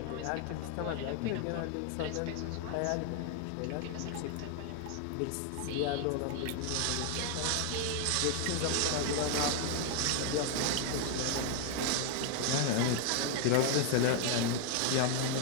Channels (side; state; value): both; different; correlation 0.00